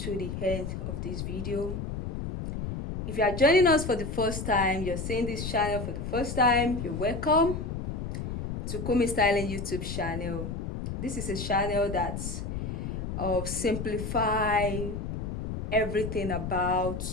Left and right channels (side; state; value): left; noise; rumble, 4 dB below the sound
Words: the end of this video. If you are joining us for the first time, you're seeing this channel for the first time, you're welcome to Kunmi Styling YouTube channel. This is a channel that simplify everything about